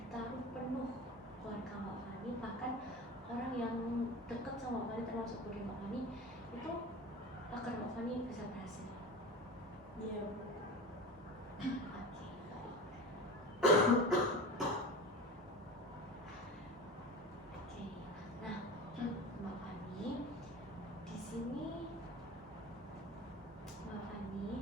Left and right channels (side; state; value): both; normal; correlation 0.31